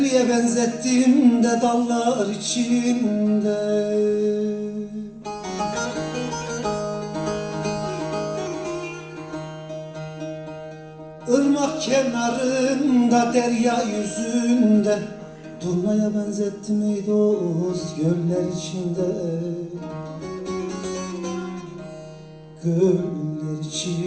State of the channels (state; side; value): identical; both; correlation 1.00